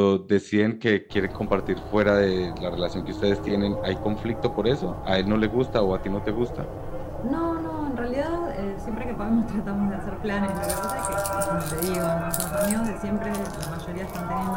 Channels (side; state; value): both; identical; correlation 1.00